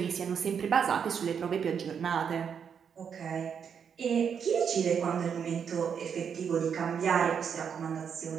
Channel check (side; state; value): left; quieter; 7.2 dB